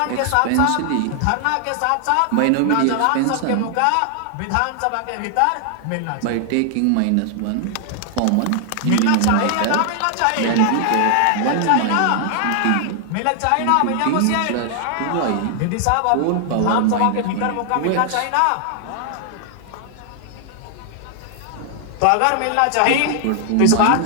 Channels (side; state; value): both; different; correlation 0.00